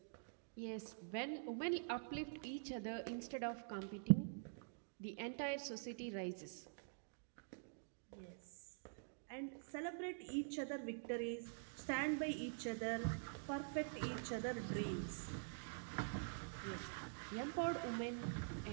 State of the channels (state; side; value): silent; left; digital silence